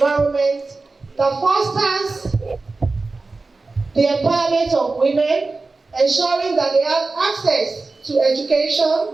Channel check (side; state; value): left; quieter; 3.7 dB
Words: that fosters the empowerment of women, ensuring that they have access to